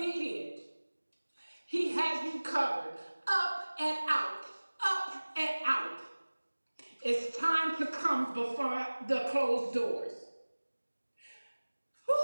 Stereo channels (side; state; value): both; inverted; correlation -1.00